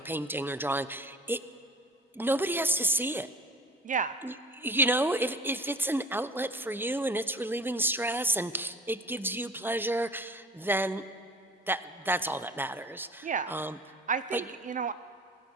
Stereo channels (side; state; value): both; normal; correlation 0.43